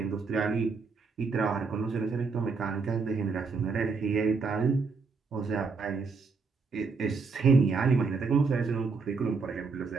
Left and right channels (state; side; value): quieter; left; 4.6 dB